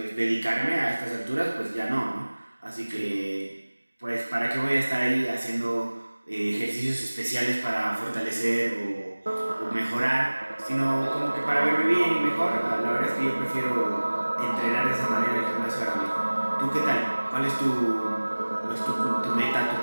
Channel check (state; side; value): inverted; both; correlation -1.00